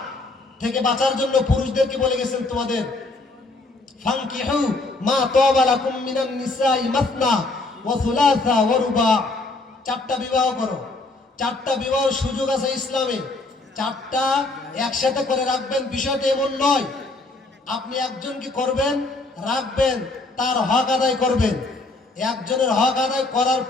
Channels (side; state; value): right; quieter; 3.2 dB